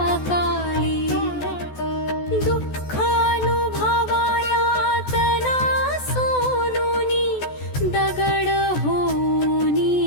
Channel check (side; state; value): right; late; 14 ms